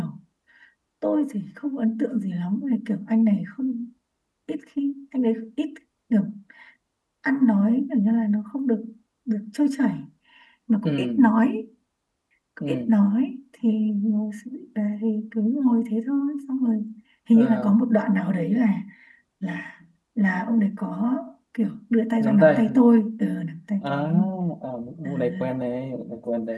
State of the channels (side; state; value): both; identical; correlation 1.00